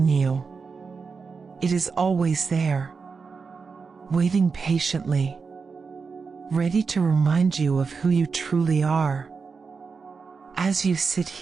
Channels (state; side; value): quieter; left; 5.1 dB